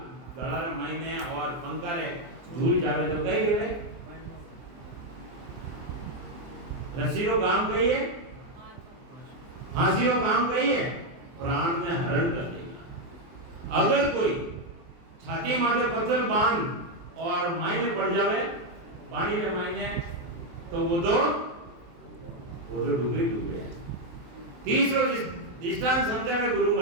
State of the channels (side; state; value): left; late; 23 ms